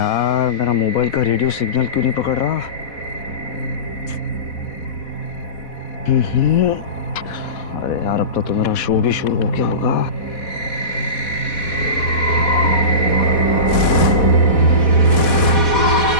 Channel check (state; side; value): late; right; 4.1 ms